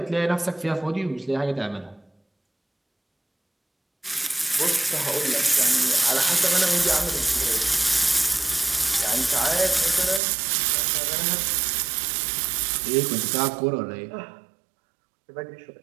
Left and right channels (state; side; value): drops out; left; at 10.2 s